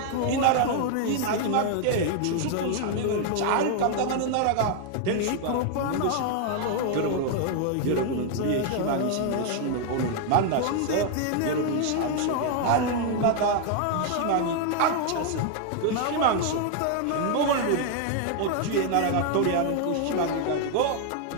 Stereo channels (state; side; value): different; both; correlation 0.00